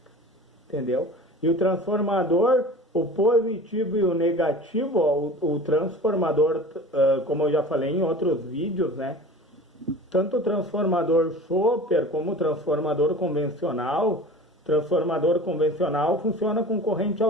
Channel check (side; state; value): both; normal; correlation 0.38